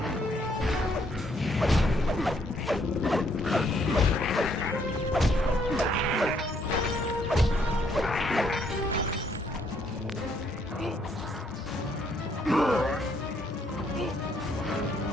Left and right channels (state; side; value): normal; both; correlation 0.70